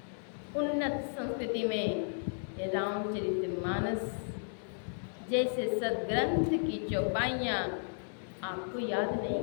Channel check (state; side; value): silent; right; 55 dB below the other